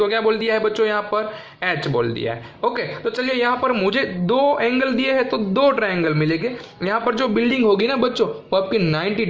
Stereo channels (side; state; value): both; identical; correlation 1.00